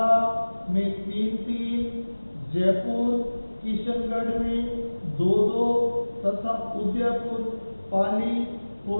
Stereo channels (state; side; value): inverted; both; correlation -1.00